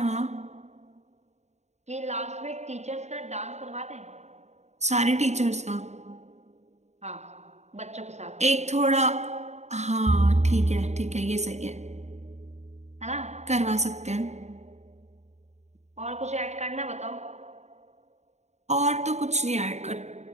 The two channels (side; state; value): left; late; 0.33 ms